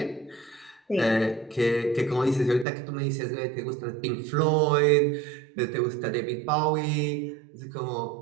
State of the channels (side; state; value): left; drops out; at 2.7 s